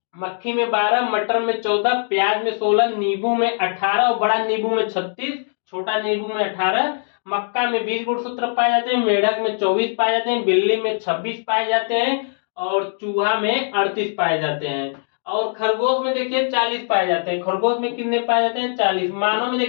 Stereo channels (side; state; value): right; silent; digital silence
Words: मक्खी में 12, मटर में 14, प्याज में 16, नींबू में 18 और बड़ा नींबू में 36, छोटा नींबू में 18। मक्का में 20 गुणसूत्र पाए जाते हैं, मेढक में 24 पाए जाते हैं, बिल्ली में 26 पाए जाते हैं और चूहा में 38 पाए जाते हैं। और खरगोश में देखिए 40 पाए जाते हैं। खरगोश में कितने पाए जाते हैं, 40। मानव में